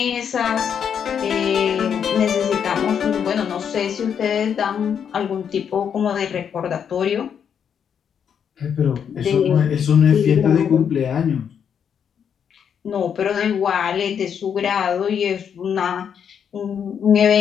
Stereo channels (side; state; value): right; quieter; 7.8 dB